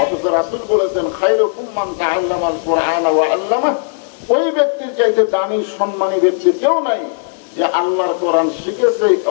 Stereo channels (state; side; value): silent; right; 58 dB below the other